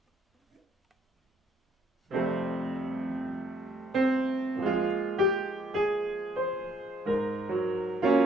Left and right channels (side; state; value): both; normal; correlation 0.68